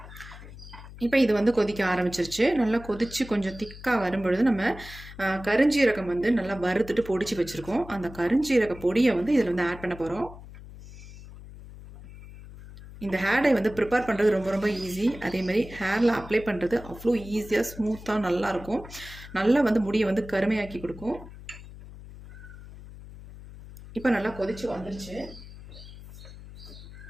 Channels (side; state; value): left; noise; hum, 16 dB below the sound